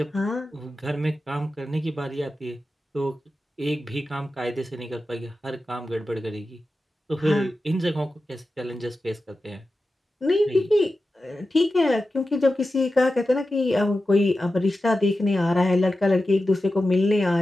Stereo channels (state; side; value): normal; both; correlation 0.92